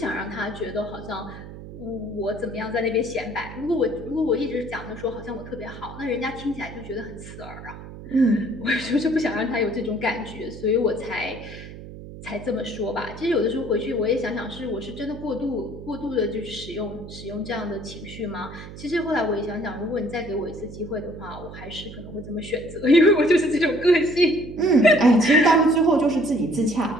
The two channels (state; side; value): noise; right; hum, 13 dB below the sound